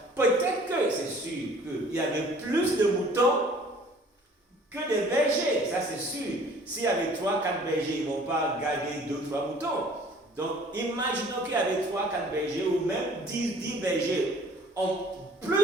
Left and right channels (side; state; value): both; normal; correlation 0.52